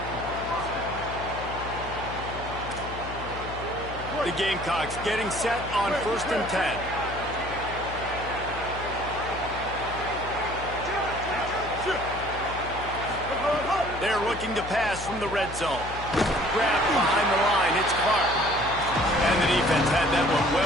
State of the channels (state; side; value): noise; left; hum, 11 dB below the sound